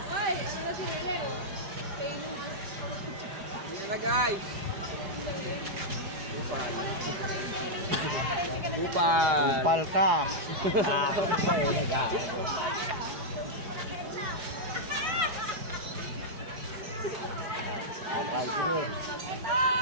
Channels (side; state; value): left; late; 5.0 ms